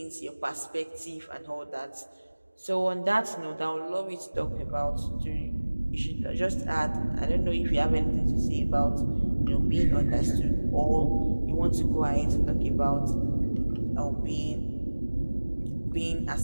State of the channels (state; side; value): inverted; both; correlation -1.00